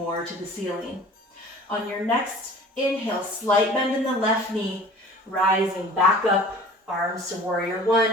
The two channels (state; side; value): normal; both; correlation 0.44